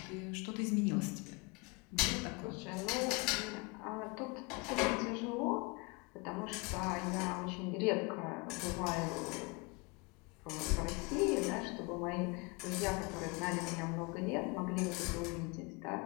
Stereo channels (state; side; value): quieter; right; 28.1 dB